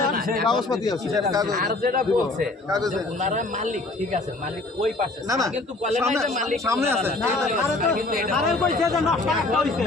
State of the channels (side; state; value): right; quieter; 3.1 dB